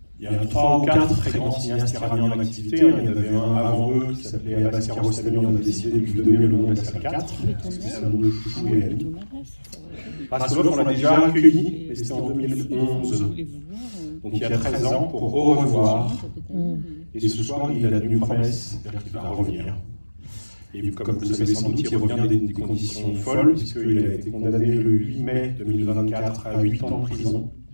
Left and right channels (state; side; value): inverted; both; correlation -1.00